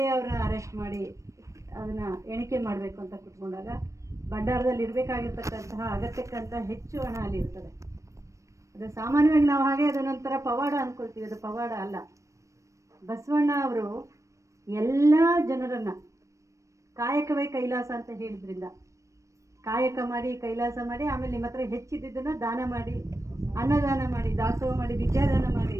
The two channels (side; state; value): left; late; 0.15 ms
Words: ಅವ್ರನ್ನ ಅರೆಸ್ಟ್ ಮಾಡಿ ಅದನ್ನು ಎಣಿಕೆ ಮಾಡಬೇಕು ಅಂತ ಕೂತ್ಕೊಂಡಾಗ ಭಂಡಾರದಲ್ಲಿ ಇರಬೇಕಾಗಿರ್ತಕ್ಕಂತಹ ಅಗತ್ಯಕ್ಕಂತ ಹೆಚ್ಚು ಹಣ ಅಲ್ಲಿ ಇರ್ತದೆ. ಅದು ಸಾಮಾನ್ಯವಾಗಿ ನಾವು ಹಾಗೆ ಅದ ನಂತರ ಪವಾಡ ಅಂದ್ಕೊಳ್ತೀವಿ, ಅದು ಪವಾಡ ಅಲ್ಲ. ಬಸವಣ್ಣ ಅವರು ಎಲ್ಲ ಜನರನ್ನು ಕಾಯಕವೇ ಕೈಲಾಸ ಅಂತ ಹೇಳಿದ್ರಿಂದ ಕಾಯಕ ಮಾಡಿ ಕೈಲಾಸ ಮಾಡಿ ಆಮೇಲೆ ನಿಮ್ಮ ಹತ್ರ ಹೆಚ್ಚಿದ್ದನ್ನು ದಾನ ಮಾಡಿ ಅನ್ನದಾನ ಮಾಡಿ ದಾಸೋಹ ಮಾಡಿ ವಿದ್ಯಾದಾನ ಮಾಡಿ